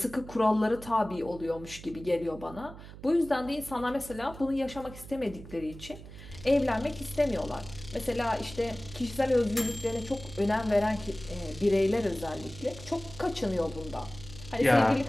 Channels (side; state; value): right; noise; hum, 15 dB below the sound